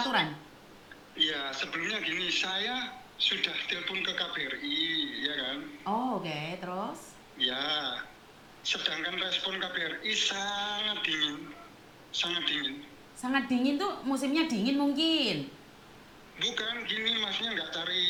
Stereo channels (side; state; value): both; identical; correlation 1.00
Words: Iya, sebelumnya gini, saya sudah telepon ke KBRI, ya kan? Oh, oke, terus? Ya, sedangkan respon KBRI sangat dingin, sangat dingin. Sangat dingin tuh, musimnya dingin mungkin. Bukan gini, maksudnya nggak cari,